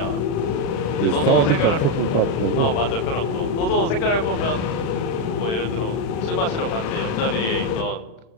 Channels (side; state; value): right; late; 36 ms